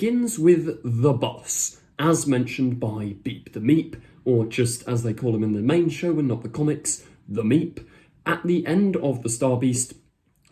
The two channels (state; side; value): identical; both; correlation 1.00